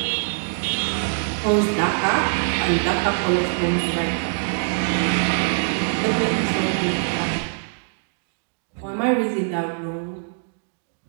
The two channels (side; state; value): left; silent; digital silence